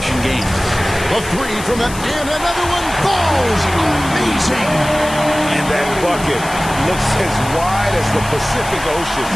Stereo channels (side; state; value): left; noise; hiss, 13 dB below the sound